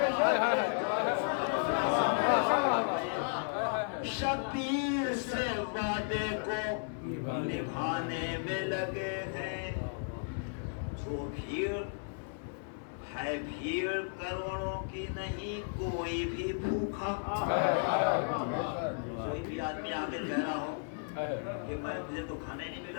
شبیر سے وعدے کو نبھانے میں لگے ہیں جو بھیڑ ہے بھیڑ کروڑوں کی نہیں کوئی بھی بھوکا کوئی بھی آدمی آگے کہہ رہا ہو کہ مجھے تو کھانے نہیں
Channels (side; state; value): right; silent; digital silence